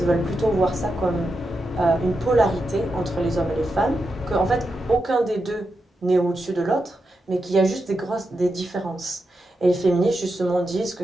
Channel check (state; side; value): normal; both; correlation 0.87